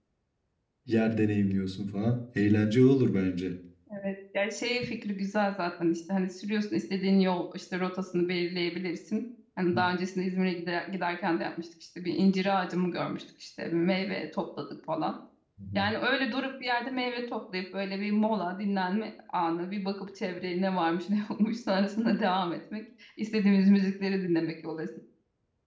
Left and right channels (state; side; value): identical; both; correlation 1.00